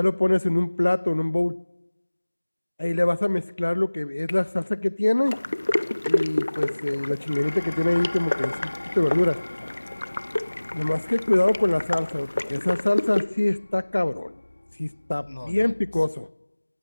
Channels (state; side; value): inverted; both; correlation -1.00